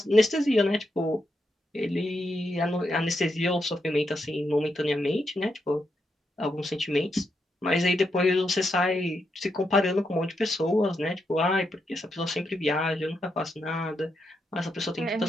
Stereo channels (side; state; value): both; normal; correlation 0.83